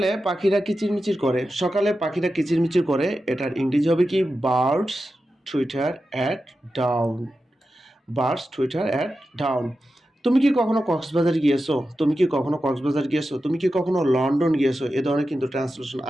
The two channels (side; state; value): both; normal; correlation 0.91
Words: পাখিরা কিচিরমিচির করে। সকালে পাখিরা কিচিরমিচির করে, এটার ইংরেজি হবে কি? Birds Twitter at dawn. Birds Twitter at dawn. তুমি কি কখনো কক্সবাজার গিয়েছো? তুমি কি কখনো কক্সবাজার গিয়েছো? তুমি কি কখনো লন্ডন গিয়েছো? এ ধরনের কিন্তু ট্রান্সলেশন